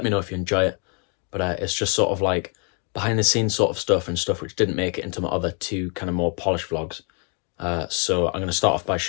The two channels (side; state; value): right; quieter; 38.1 dB